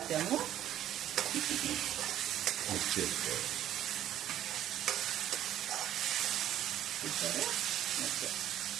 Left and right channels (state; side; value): quieter; left; 11.8 dB